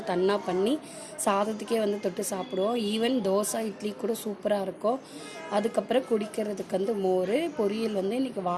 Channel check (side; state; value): both; identical; correlation 1.00